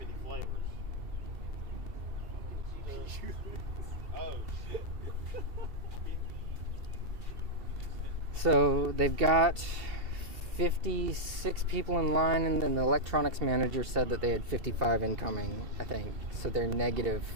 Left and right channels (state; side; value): late; left; 2.7 ms